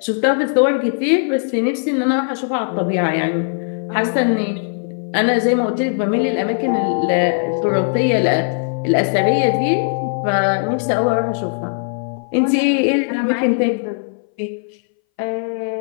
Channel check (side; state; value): right; silent; 62 dB below the other